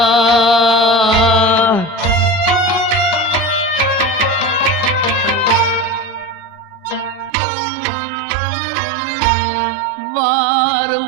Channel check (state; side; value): drops out; left; at 7.3 s